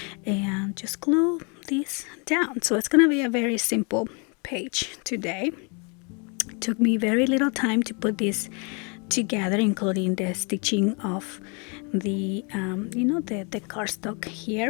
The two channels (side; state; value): right; quieter; 34.2 dB